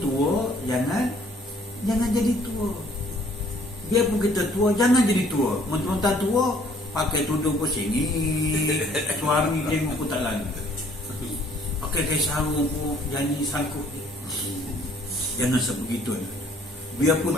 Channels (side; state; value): both; normal; correlation 0.60